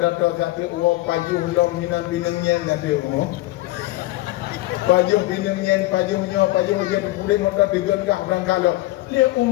satu uang pajuh long minang binengnya nanti uang pajuh binengnya pajuh dia udet motor digengah berangkat lo dia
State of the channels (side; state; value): right; quieter; 18.1 dB